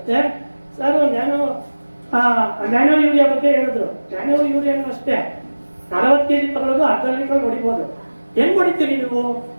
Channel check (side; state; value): both; inverted; correlation -1.00